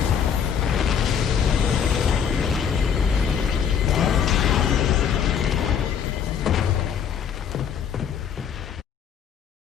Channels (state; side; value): quieter; right; 7.8 dB